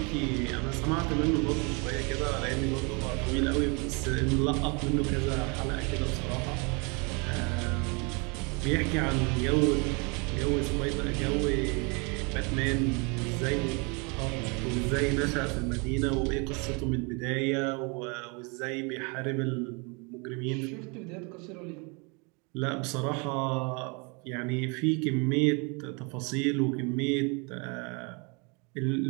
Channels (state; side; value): quieter; left; 31.7 dB